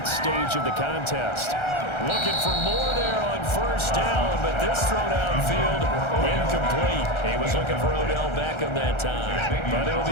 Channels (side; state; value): right; late; 1.3 ms